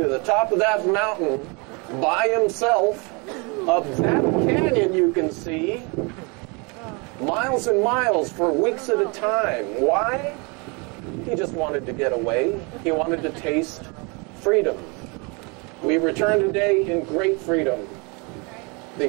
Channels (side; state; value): left; quieter; 30.9 dB